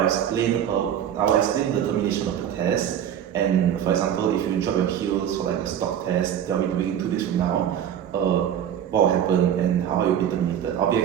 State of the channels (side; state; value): left; quieter; 9.6 dB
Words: explain the termination of the test. And for example, if you drop your heels for like a stock test that we'll be doing 2 days from now, what will happen and how you'll be terminated. I'll be